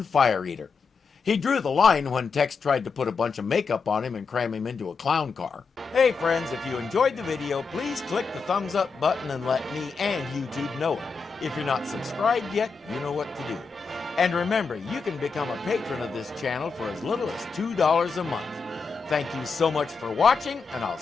fire eater. He drew the line when Tex tried to put a bunch of makeup on him and cram him into a clown car. Hey friends, if you enjoyed the video, please click the thumbs up button and let me and YouTube know it. If you're not subscribed yet, you know what to do. And remember, you can become a patron of this channel for as little as $2 a month. Thank you so much for watching, and I'll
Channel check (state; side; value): quieter; right; 5.0 dB